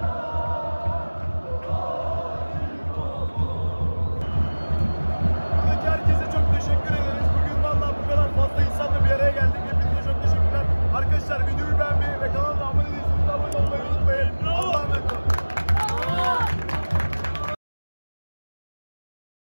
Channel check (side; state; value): both; inverted; correlation -1.00